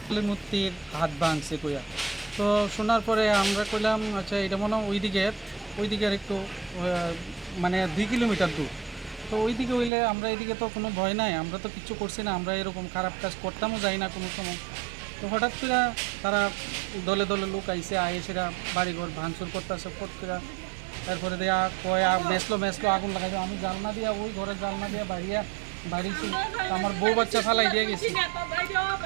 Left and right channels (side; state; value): left; drops out; at 9.9 s